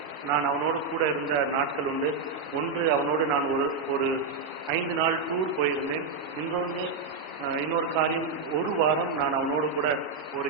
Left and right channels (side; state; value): left; quieter; 4.6 dB